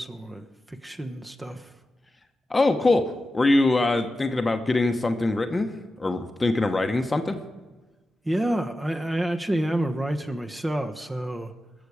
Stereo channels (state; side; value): normal; both; correlation 0.92